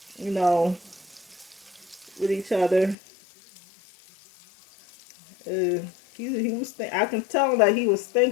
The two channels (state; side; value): drops out; right; at 3.0 s